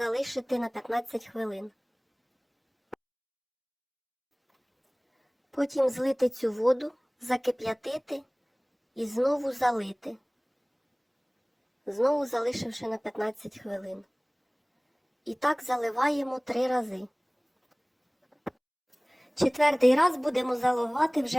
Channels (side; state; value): both; identical; correlation 1.00